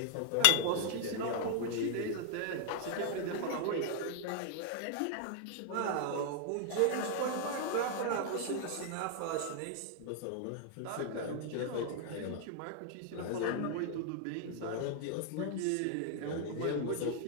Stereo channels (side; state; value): both; different; correlation 0.00